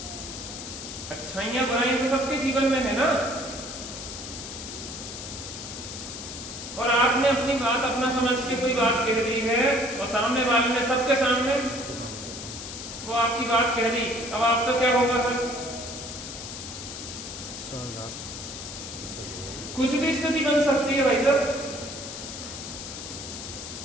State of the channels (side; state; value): left; noise; hiss, 9 dB below the sound